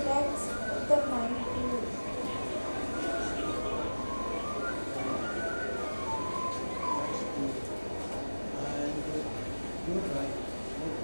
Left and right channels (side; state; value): both; inverted; correlation -1.00